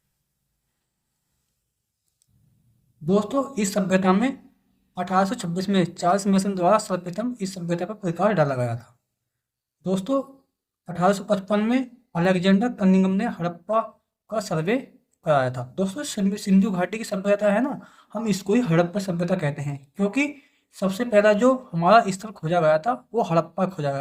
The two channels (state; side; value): identical; both; correlation 1.00